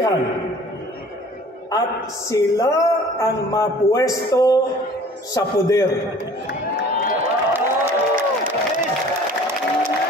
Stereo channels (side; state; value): both; normal; correlation 0.49